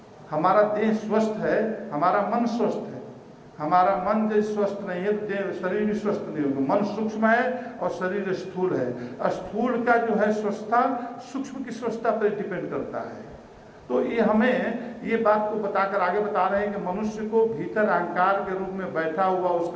हमारा देह स्वस्थ है, हमारा मन स्वस्थ है। हमारा मन जो स्वस्थ नहीं है तो देह शरीर भी स्वस्थ नहीं होगा। मन सूक्ष्म है और शरीर स्थूल है। स्थूल का जो है स्वस्थता सूक्ष्म की स्वस्थता पर डिपेंड करता है। तो ये हमें ये बात को बताकर आगे बता रहे हैं कि मनुष्य को भीतर अहंकार के रूप में बैठा हुआ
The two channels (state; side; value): identical; both; correlation 1.00